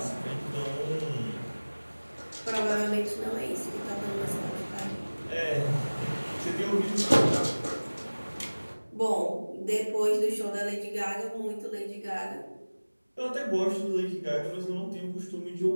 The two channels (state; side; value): inverted; both; correlation -1.00